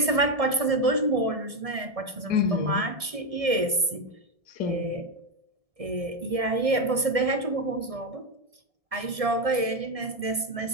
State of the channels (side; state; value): left; late; 1.7 ms